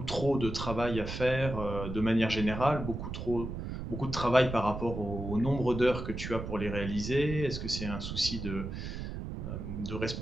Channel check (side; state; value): right; noise; rumble, 6 dB below the sound